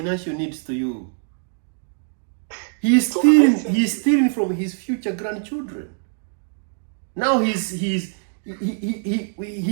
needs to you? He is stealing from his future grandchildren. Now he's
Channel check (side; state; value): left; silent; 63 dB below the other